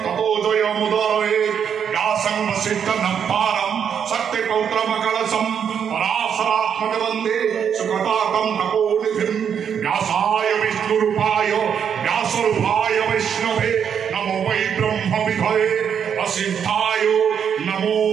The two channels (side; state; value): left; quieter; 7.8 dB